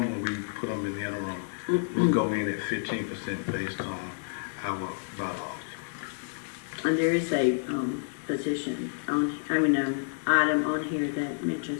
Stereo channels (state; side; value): silent; right; digital silence